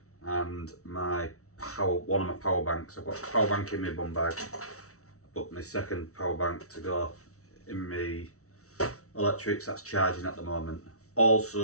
and one of my power banks. I've got a power bank in my bum bag, but my second power bank to go in my electrics that's charging at the moment.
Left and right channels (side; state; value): right; late; 0.64 ms